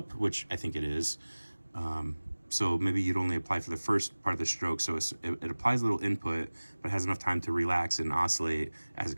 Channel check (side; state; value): both; inverted; correlation -1.00